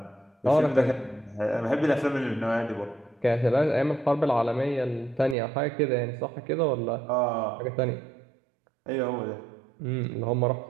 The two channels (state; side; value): drops out; left; at 5.4 s